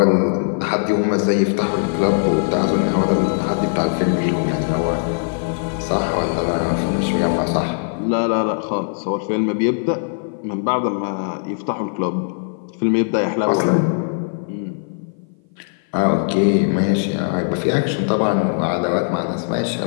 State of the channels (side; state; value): right; silent; 57 dB below the other